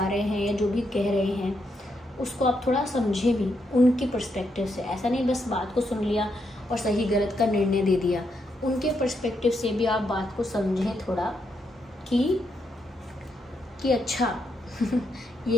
रहे हैं या जो भी कह रहे हैं उसको आप थोड़ा समझे भी उनके पर्सपेक्टिव से। ऐसा नहीं बस बात को सुन लिया और सही गलत का निर्णय दे दिया, उनके पर्सपेक्टिव से भी आप बात को समझें थोड़ा कि अच्छा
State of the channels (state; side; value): normal; both; correlation 0.80